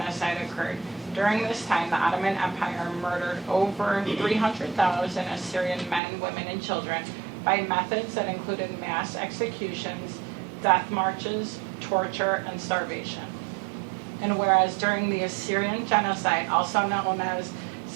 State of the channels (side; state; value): left; drops out; at 6.0 s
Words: occurred. During this time, the Ottoman Empire murdered over 300,000 Assyrian men, women, and children by methods that included mass executions, death marches, torture, and starvation. And whereas during the Assyrian genocide, also known as